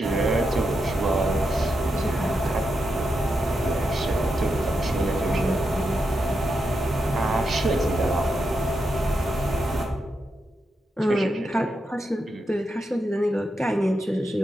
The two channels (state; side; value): normal; both; correlation 0.86